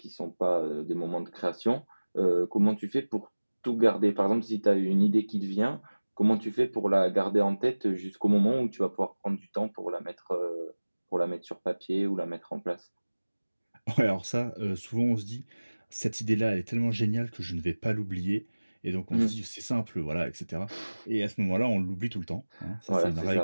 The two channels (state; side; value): inverted; both; correlation -1.00